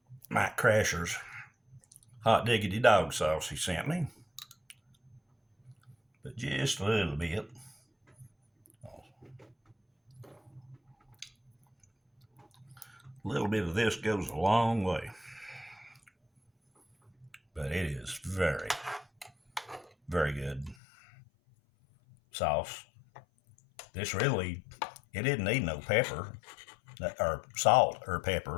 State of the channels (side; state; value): right; drops out; at 20.8 s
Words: Mike Crasher's hot diggity dog sauce he sent me, but just a little bit. A little bit of this goes a long way, but it is very, very good sauce. This really, it didn't need no pepper or salt or